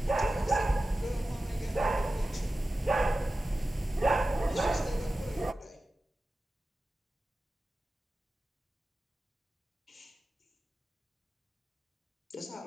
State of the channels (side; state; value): both; normal; correlation 0.94